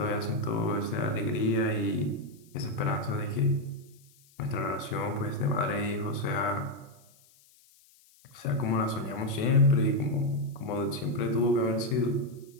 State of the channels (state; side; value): noise; left; hiss, 29 dB below the sound